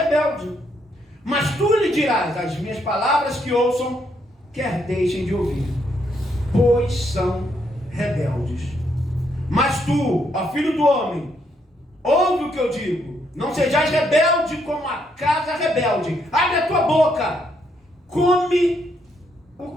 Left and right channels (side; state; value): both; normal; correlation 0.75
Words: Mas tu lhe dirás: as minhas palavras que ouçam, quer deixem de ouvir, pois são rebeldes. Mas tu, ó filho do homem, ouve o que eu digo, não sejais rebelde como a casa rebelde. Abre a tua boca, come o